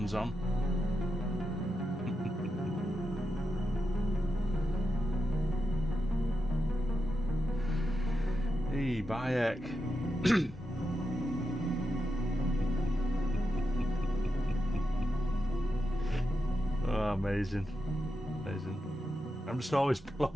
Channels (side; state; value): both; normal; correlation 0.88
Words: on. Hey, Bayek. Oh, amazing. Amazing. I'm just always